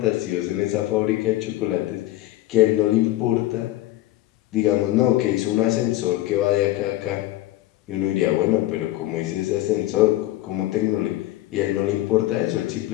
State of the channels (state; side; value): quieter; right; 16.0 dB